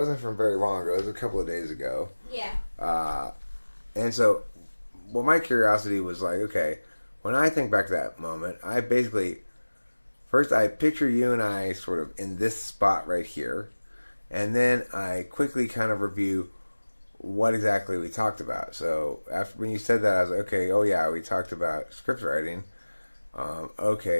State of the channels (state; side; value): inverted; both; correlation -1.00